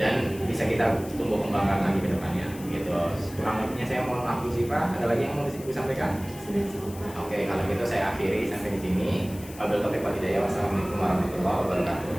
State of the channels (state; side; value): noise; left; hiss, 18 dB below the sound